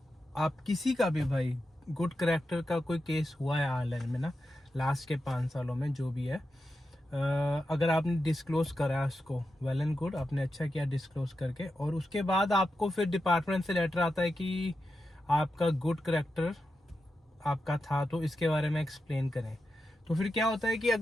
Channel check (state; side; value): normal; both; correlation 0.89